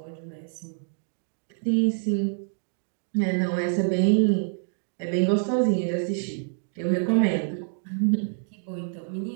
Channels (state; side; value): silent; left; digital silence